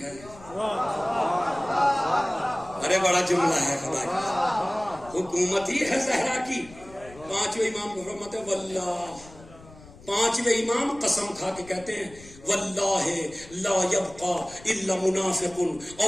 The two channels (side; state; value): left; noise; rumble, 21 dB below the sound